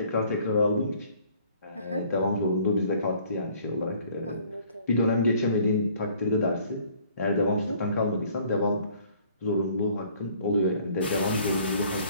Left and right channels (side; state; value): both; inverted; correlation -0.58